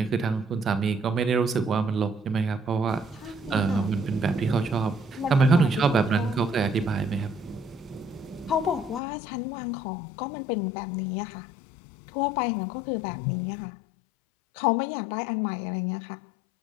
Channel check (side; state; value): right; drops out; at 9.0 s